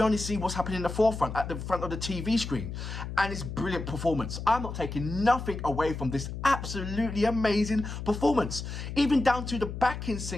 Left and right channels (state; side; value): noise; left; hum, 7 dB below the sound